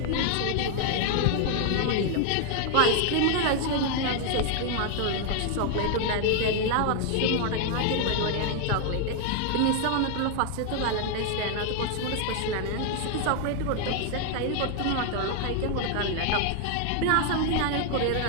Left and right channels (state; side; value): different; both; correlation 0.00